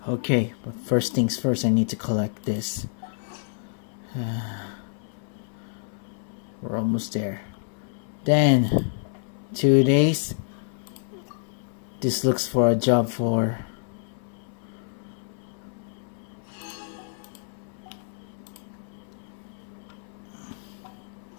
Okay, but first things first, I need to collect this. We're almost there. Then, 2 days. This looks for a job for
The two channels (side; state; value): right; silent; 60 dB below the other